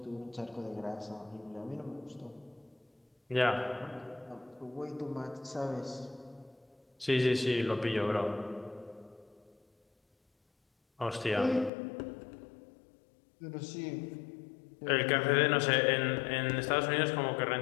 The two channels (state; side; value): drops out; right; at 11.7 s